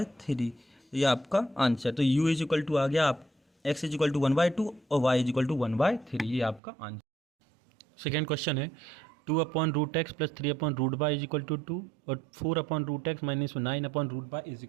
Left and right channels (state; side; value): drops out; left; at 6.6 s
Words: ये आपका आंसर। तो u इज इक्वल टू आ गया आप x इज इक्वल टू 1/2 और y इज इक्वल टू 1/3। ये आपका आंसर। सेकेंड क्वेश्चन है 2/√x plus 3/√y is equal to 2 और 4/√x minus 9/√y is